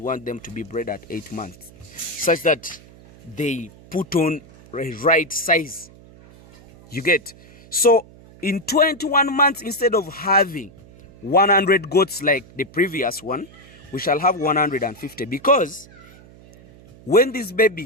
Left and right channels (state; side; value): noise; right; hum, 23 dB below the sound